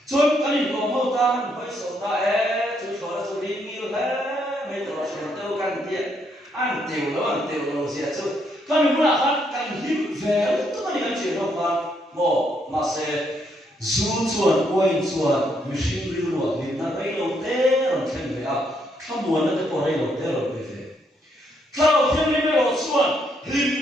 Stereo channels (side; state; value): both; normal; correlation 0.74